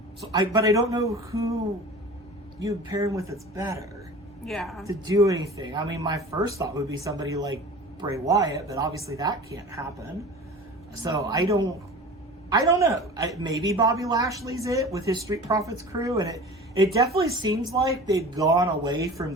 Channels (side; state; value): both; normal; correlation 0.38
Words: I don't know who you pair him with that's better. Yeah. To do anything. I mean, my first thought would be somebody like Bray Wyatt, but obviously that can't happen. So I don't know. Maybe Bobby Lashley's it with his Street Profits crew, and it definitely seems like they've gone away from